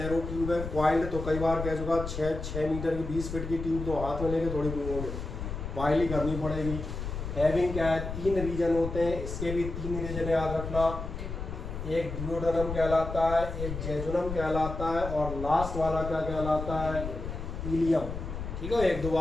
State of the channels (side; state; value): left; noise; rumble, 6 dB below the sound